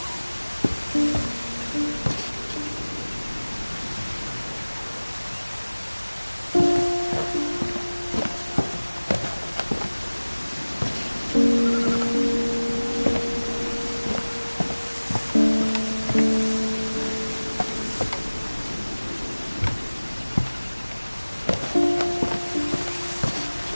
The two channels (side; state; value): both; inverted; correlation -1.00